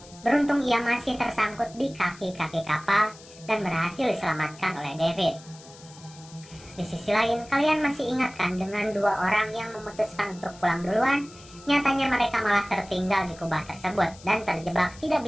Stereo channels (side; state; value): left; noise; hiss, 21 dB below the sound